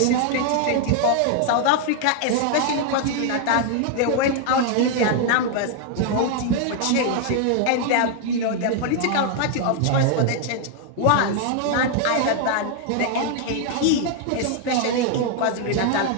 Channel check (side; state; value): both; different; correlation 0.00